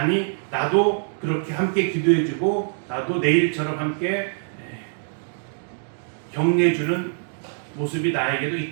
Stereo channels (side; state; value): left; silent; digital silence